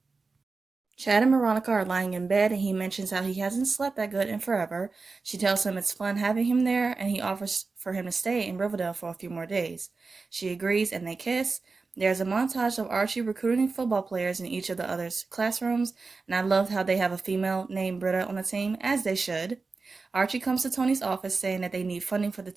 Chad and Veronica are lying in bed, and he mentions how he hasn't slept that good in forever. She tells him it's fun having him there, and he offers for him to stay in Riverdale for a few more days. She agrees, and they kiss. There's a montage of Archie recruiting football players in each of the others' classrooms, and I love how they have a female named Britta on the team, as they should. Archie comes to Tony's office saying that they need funding for the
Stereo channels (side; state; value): left; quieter; 4.1 dB